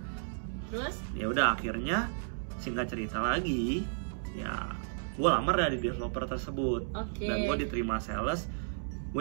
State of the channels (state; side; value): silent; left; digital silence